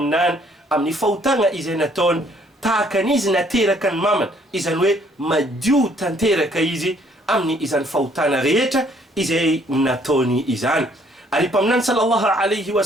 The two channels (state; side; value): normal; both; correlation 0.63